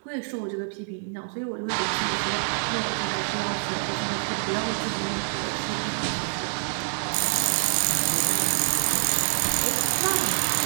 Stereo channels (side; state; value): left; silent; 61 dB below the other